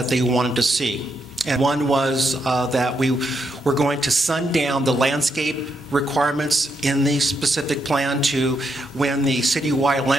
they wanted to see. And one was that we were going to sundown the landscape requirements in the specific plan to when the citywide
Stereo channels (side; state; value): both; normal; correlation 0.80